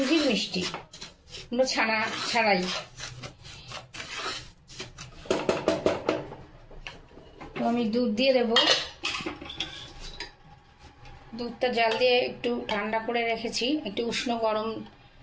মিষ্টি, কোনো ছানা ছাড়াই। তো আমি দুধ দিয়ে দেব। দুধটা জাল দিয়ে একটু ঠান্ডা করে রেখেছি, একটু উষ্ণ গরম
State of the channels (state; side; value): identical; both; correlation 1.00